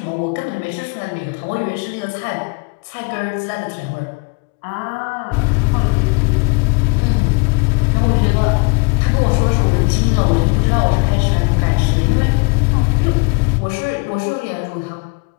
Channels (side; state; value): right; quieter; 30.4 dB